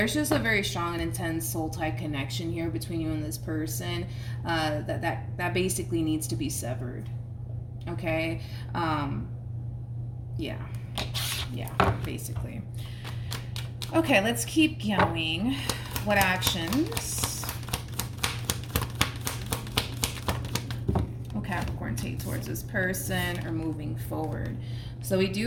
just a very strong and intense soul tie connection here between you and this person, that basically needs to be severed, okay? Yeah, basically. Okay, let's keep going. What actions Capricorn take towards this person or moving forward? So we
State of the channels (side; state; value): both; identical; correlation 1.00